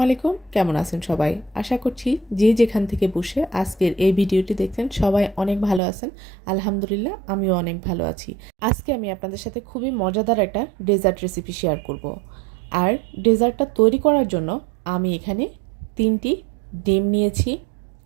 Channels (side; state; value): left; drops out; at 5.8 s